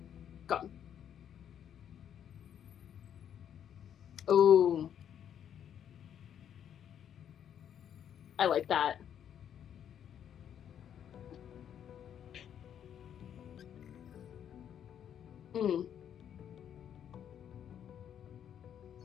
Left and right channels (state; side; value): quieter; right; 9.3 dB